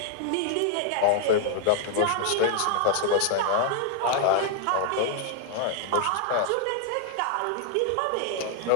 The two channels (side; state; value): both; different; correlation 0.00